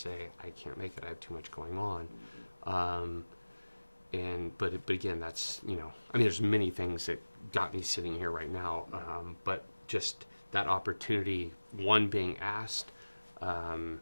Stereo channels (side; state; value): both; inverted; correlation -1.00